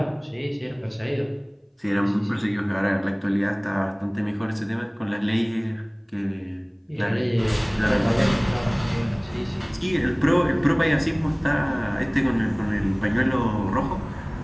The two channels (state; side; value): identical; both; correlation 1.00